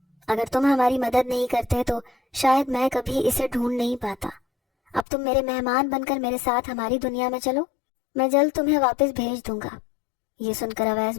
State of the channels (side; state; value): right; drops out; at 5.1 s